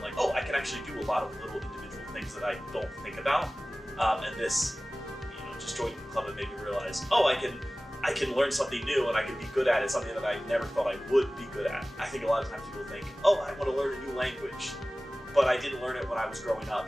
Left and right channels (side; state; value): both; normal; correlation 0.97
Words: oh, I can actually do a lot of little individual things that I don't think about. And this, just joining the club, it made me realize, oh, I can learn something new and I can be good at it, something that I never thought I would be good at. I think a lot of times people think, oh, I want to learn a new language, but I didn't learn it when I was growing